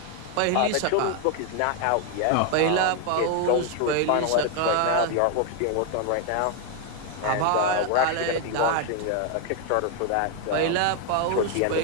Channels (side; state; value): both; different; correlation 0.01